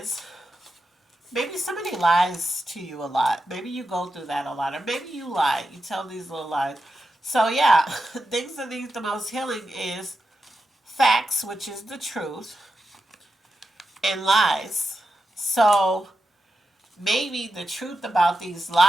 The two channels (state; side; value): normal; both; correlation 0.89